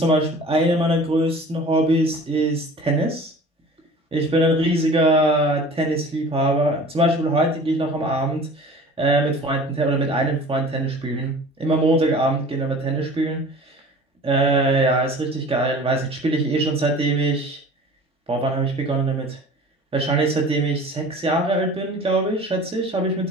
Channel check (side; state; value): both; normal; correlation 0.43